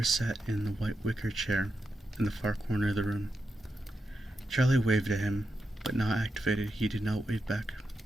sat in the white wicker chair in the far corner of the room. Charlie waved at him, but not activated, he did not wave back.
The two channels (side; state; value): both; normal; correlation 0.87